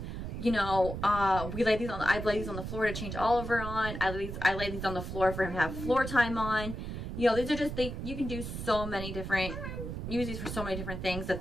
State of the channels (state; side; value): noise; right; rumble, 6 dB below the sound